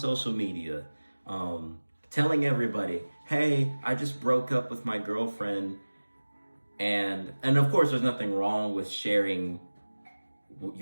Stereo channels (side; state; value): both; inverted; correlation -1.00